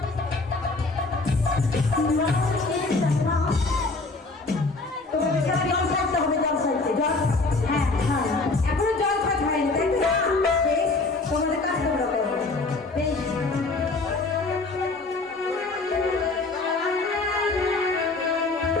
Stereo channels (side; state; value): right; quieter; 3.5 dB